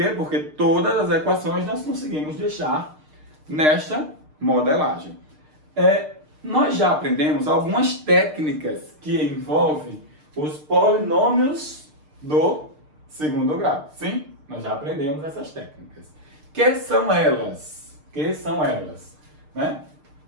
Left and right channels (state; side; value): late; left; 6.6 ms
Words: Porque todas as equações nós conseguimos deixar nesta modelagem. Nós já aprendemos algumas técnicas que envolvem os polinômios do segundo grau. Sim, nós já aprendemos essas técnicas. Que são elas? Né?